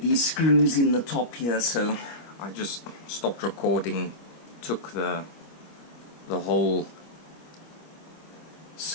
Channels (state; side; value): late; right; 25 ms